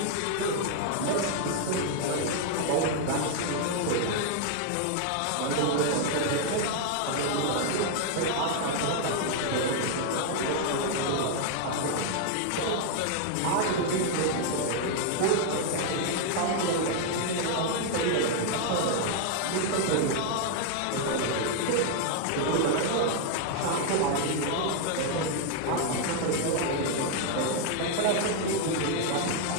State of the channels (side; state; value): both; different; correlation 0.00